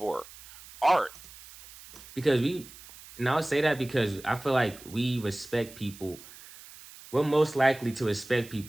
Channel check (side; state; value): right; noise; hiss, 19 dB below the sound